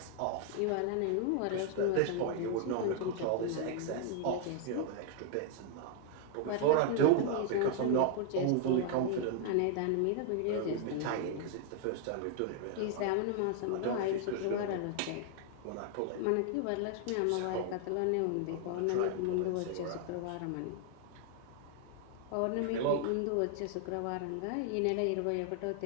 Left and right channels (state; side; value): different; both; correlation 0.00